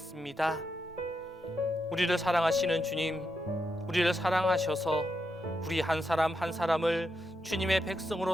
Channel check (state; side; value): normal; both; correlation 0.84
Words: 우리를 사랑하시는 주님, 우리를 사랑하셔서 우리 한 사람 한 사람을 주님의 백성으로